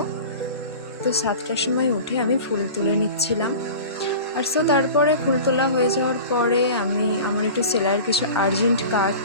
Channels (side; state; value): both; inverted; correlation -0.37